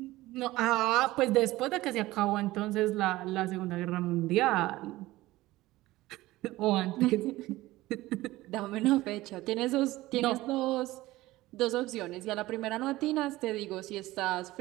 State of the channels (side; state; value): left; quieter; 17.9 dB